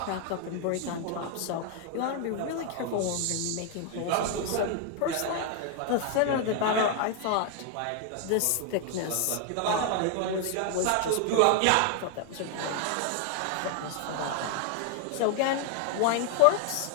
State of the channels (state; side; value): different; both; correlation 0.00